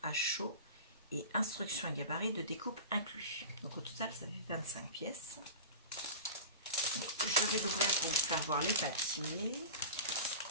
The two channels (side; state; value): both; inverted; correlation -0.32